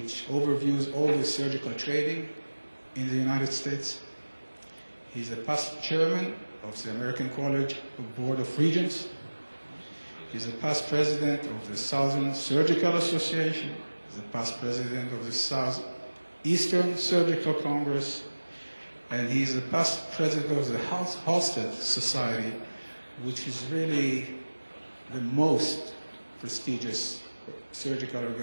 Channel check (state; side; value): inverted; both; correlation -1.00